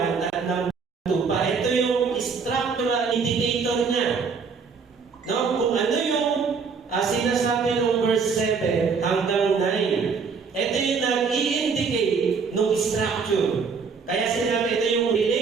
at ng tupa. Ito yung structural indicator niya. No? Kung ano yung sinasabi ng verse 7 hanggang 9. Ito yung nag-i-indicate ng structure. Kaya sinabi ito yung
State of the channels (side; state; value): left; quieter; 5.4 dB